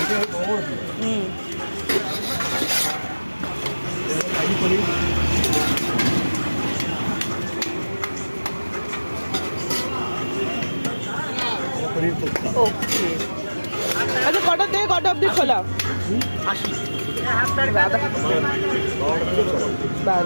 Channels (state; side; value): inverted; both; correlation -1.00